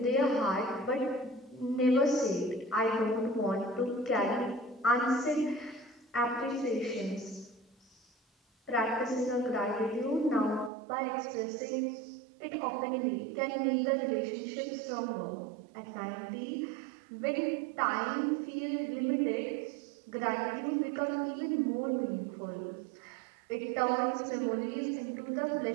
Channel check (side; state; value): left; drops out; at 10.7 s